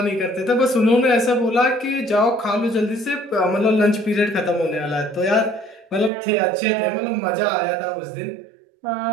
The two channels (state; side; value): drops out; left; at 6.1 s